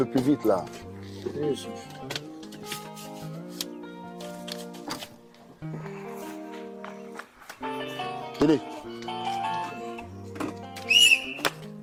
plus vite là. Oui, Tenez.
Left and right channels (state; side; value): identical; both; correlation 1.00